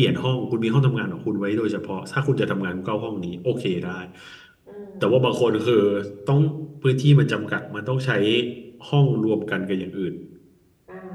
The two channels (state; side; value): identical; both; correlation 1.00